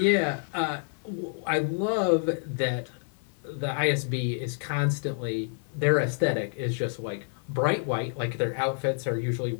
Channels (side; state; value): right; silent; 56 dB below the other